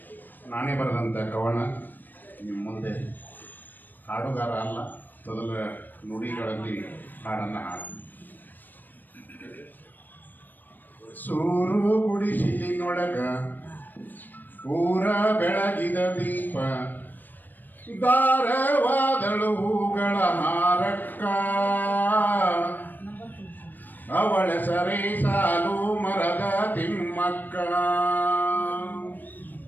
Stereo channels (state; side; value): late; right; 0.089 ms